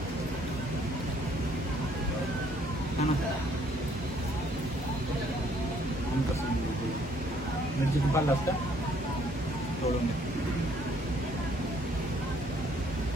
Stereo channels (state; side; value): normal; both; correlation 0.64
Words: मिरची पाला असता तोडून